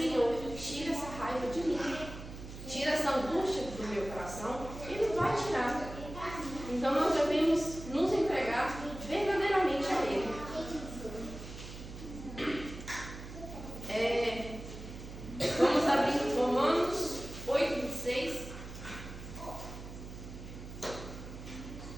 tira essa raiva de mim. Tira essa angústia do meu coração. Ele vai tirar. Então nós devemos nos entregar verdadeiramente a Ele. Vamos abrir Romanos 8:26.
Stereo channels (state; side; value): noise; right; hum, 12 dB below the sound